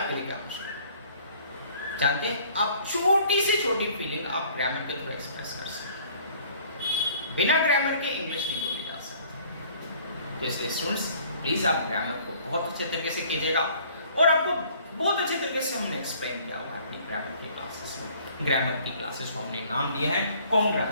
लिए क्या मुश्किल है। जानते हैं, आप छोटी से छोटी फीलिंग आप ग्रामर के थ्रू एक्सप्रेस कर सकते हैं। बिना ग्रामर के इंग्लिश नहीं बोली जा सकती। तो इसलिए स्टूडेंट्स, प्लीज आप ग्रामर को बहुत अच्छे तरीके से कीजिएगा, और आपको बहुत अच्छे तरीके से हमने एक्सप्लेन किया हुआ है अपनी ग्रामर की क्लासेस में। ग्रामर की क्लासेस को हमने नाम दिया है कॉन्ग्रा,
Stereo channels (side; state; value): both; inverted; correlation -0.55